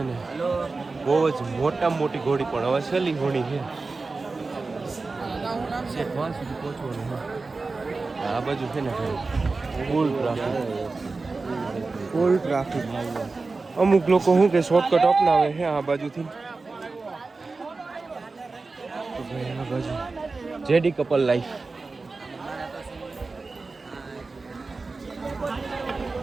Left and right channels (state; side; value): quieter; left; 3.8 dB